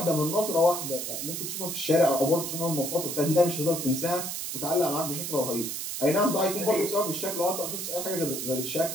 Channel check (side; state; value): right; noise; hiss, 4 dB below the sound